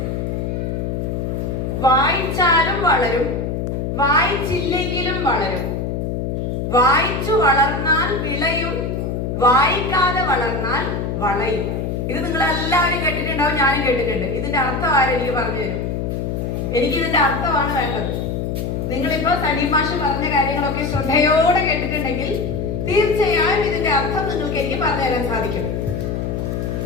വായിച്ചാലും വളരും, വായിച്ചില്ലെങ്കിലും വളരും, വായിച്ചു വളർന്നാൽ വിളയും, വായിക്കാതെ വളർന്നാൽ വളയും. ഇത് നിങ്ങൾ എല്ലാവരും കേട്ടിട്ടുണ്ടാവും, ഞാനും കേട്ടിട്ടുണ്ട്. ഇതിന്റെ അർത്ഥം ആരെനിക്ക് പറഞ്ഞു തരും? എനിക്ക് ഇതിന്റെ അർത്ഥമാണ് വേണ്ടത്. നിങ്ങളിപ്പോ സലീം മാഷ് പറഞ്ഞ കാര്യങ്ങളൊക്കെ ശ്രദ്ധയോടെ കേട്ടിട്ടുണ്ടെങ്കിൽ തീർച്ചയായും ഇതിന്റെ അർത്ഥം നിങ്ങൾക്ക് എനിക്ക് പറഞ്ഞു തരാൻ സാധിക്കും.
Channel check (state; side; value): noise; left; hum, 2 dB below the sound